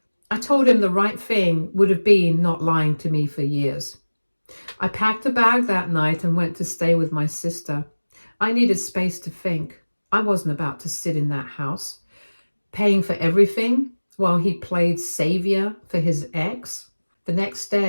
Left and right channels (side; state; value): both; inverted; correlation -1.00